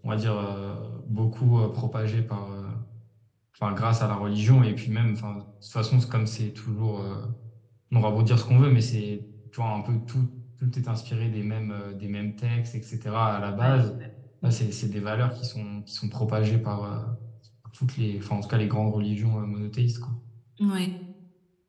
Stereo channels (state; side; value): identical; both; correlation 1.00